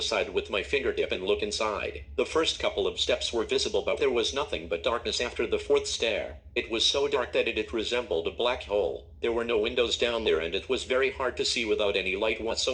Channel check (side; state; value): both; identical; correlation 1.00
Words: side with my fingertip and look inside. The first couple of steps were visible, but there was nothing but darkness after the fourth stair. It was so dark that it resembled a black hole. There were no windows down there and it was very hard to see without any light